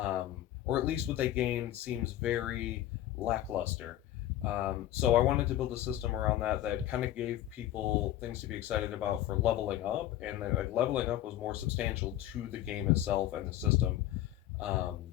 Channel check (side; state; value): right; quieter; 13.2 dB